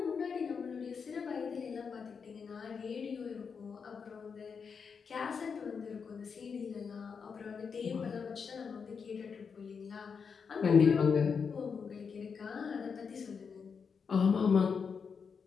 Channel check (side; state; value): right; quieter; 5.9 dB